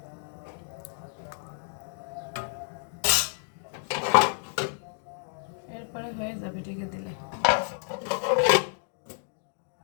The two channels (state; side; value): silent; right; digital silence